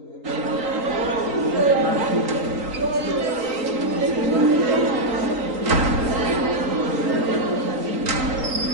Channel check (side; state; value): left; late; 3.8 ms